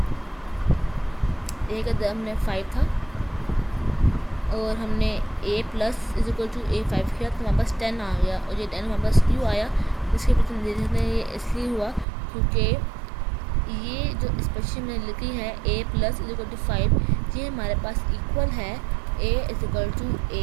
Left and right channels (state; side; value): drops out; left; at 12.1 s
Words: ए का दर हमने 5 था और हमने ए प्लस इज इक्वल टू ए 5 किया तो हमारे पास 10 आ गया, और ये 10 हमारे पास क्यों आया इसके पीछे हम देख सकते हैं। ये इसलिए हुआ क्योंकि ये जो एक्सप्रेशन मैंने लिखी है a plus is equal to 5, ये हमारे पास इक्वल है a is equal to